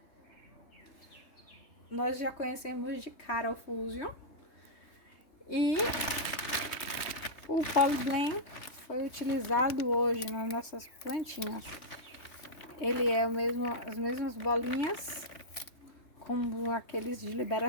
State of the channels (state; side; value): late; right; 3.2 ms